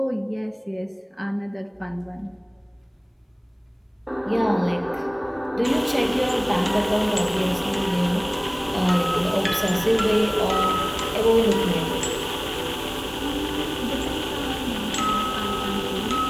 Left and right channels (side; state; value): both; identical; correlation 1.00